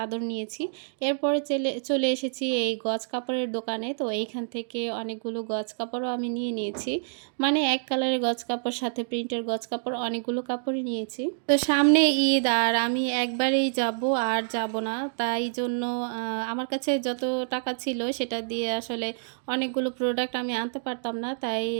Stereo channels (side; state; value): left; silent; digital silence